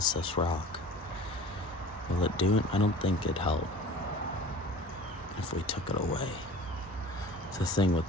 this rock. Will it do it? I don't think it'd help if we took it away. The thing with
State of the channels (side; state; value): both; normal; correlation 0.42